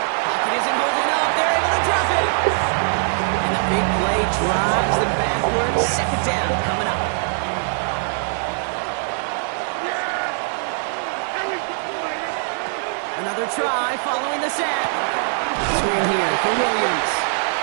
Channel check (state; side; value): silent; left; 64 dB below the other